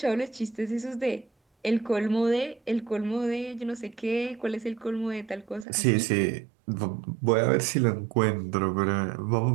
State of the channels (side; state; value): left; drops out; at 5.7 s